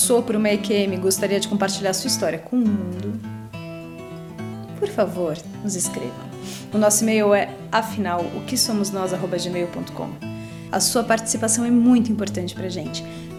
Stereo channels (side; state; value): both; identical; correlation 1.00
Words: por uma EQM e gostaria de compartilhar sua história com o mundo, por favor, nos escreva. O nosso e-mail é afinal-o-que-somos-nós@gmail.com. A sua participação é muito importante pra gente.